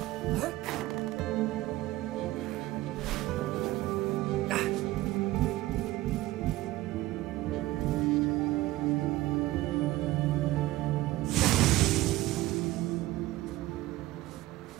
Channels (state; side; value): quieter; left; 17.3 dB